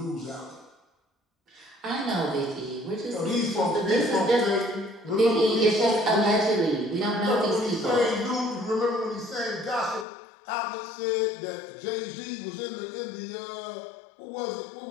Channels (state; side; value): drops out; right; at 10.1 s